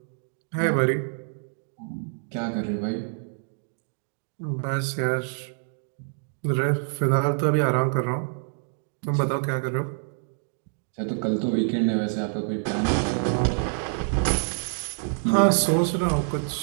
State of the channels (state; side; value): silent; left; 55 dB below the other